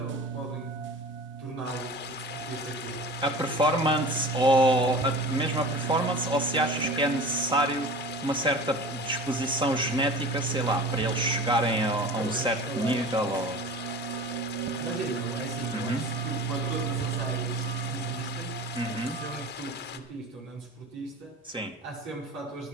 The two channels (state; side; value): normal; both; correlation 0.37